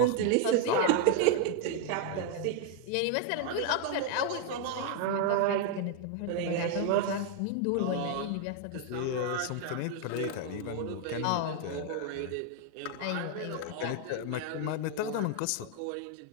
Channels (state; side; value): different; both; correlation 0.00